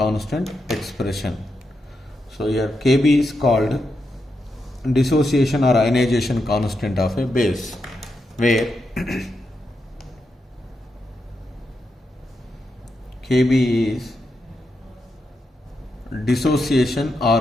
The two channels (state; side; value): normal; both; correlation 0.85